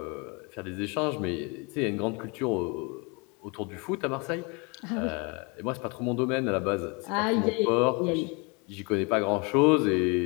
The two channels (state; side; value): quieter; right; 30.8 dB